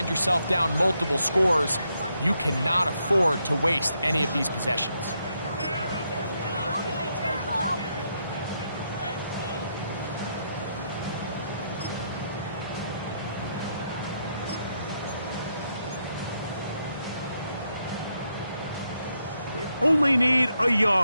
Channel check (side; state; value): both; inverted; correlation -0.79